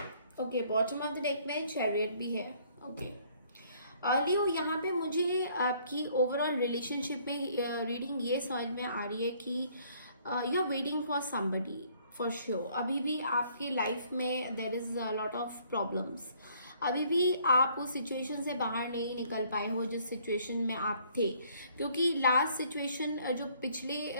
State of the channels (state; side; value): inverted; both; correlation -0.62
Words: okay, bottom of the deck में chariot भी है। Okay लियो, यहाँ पे मुझे आपकी ओवरऑल रिलेशनशिप में रीडिंग ये समझ में आ रही है कि you are waiting for somebody for sure. अभी भी आपके लाइफ में there is a lot of problems, अभी भी आप उस सिचुएशन से बाहर नहीं निकल पाए हो जिस सिचुएशन में आप थे, क्योंकि लास्ट सिचुएशन जो